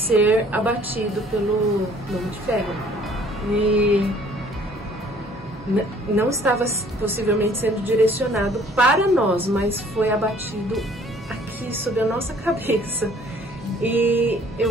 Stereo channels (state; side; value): normal; both; correlation 0.56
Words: abatido pelo Homem de Ferro. E não estava possivelmente sendo direcionado para nós, mas foi abatido aqui sobre a nossa cabeça. E